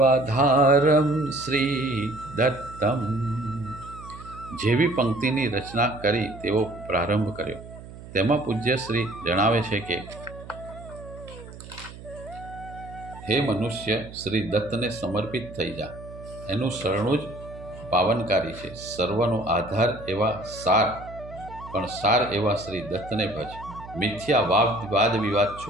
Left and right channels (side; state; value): right; noise; hum, 15 dB below the sound